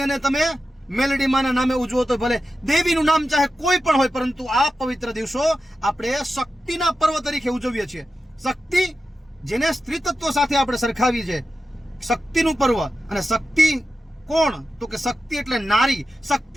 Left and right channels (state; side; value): normal; both; correlation 0.91